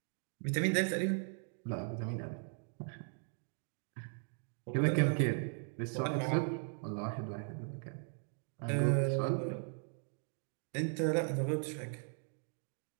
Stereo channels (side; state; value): left; silent; 52 dB below the other